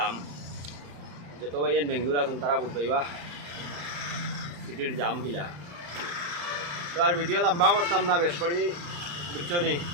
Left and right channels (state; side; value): late; left; 34 ms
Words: যত ভাই বেঙ্গলোর আসুন তারা বুঝবাইবা সিটির জাম কিলা তো আর ভিডিও লম্বা করতাম না বেশ করি বুঝছো নি